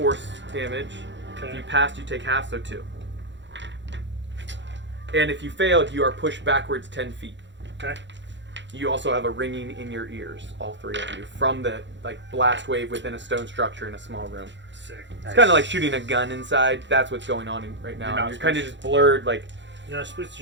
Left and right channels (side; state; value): left; late; 0.53 ms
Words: damage. Okay. If you passed, you take half, so 2. And if you failed, you are pushed backwards 10 feet. Okay. You also have a ringing in your ears, all 3 of you, from the blast wave within a stone structure in a small room. Sick. It's kind of like shooting a gun inside. That's what's going on right now. You're not You're kind of just blurred, like You're not supposed to